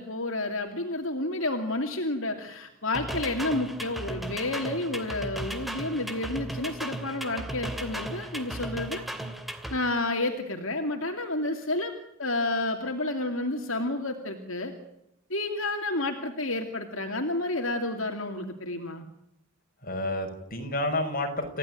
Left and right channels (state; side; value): normal; both; correlation -0.03